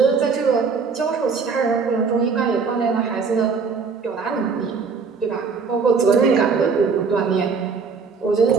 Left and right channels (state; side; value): quieter; left; 5.2 dB